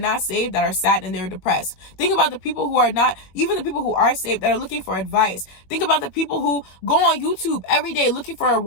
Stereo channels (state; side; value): late; right; 21 ms